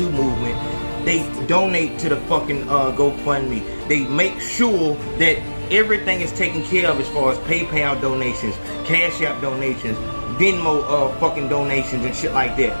movement, they donate to the fucking GoFundMe. They make sure that everything is taken care of as far as PayPal donations, Cash App donations, Venmo fucking donations and shit like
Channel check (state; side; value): inverted; both; correlation -1.00